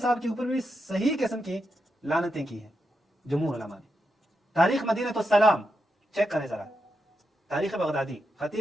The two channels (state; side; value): normal; both; correlation 0.85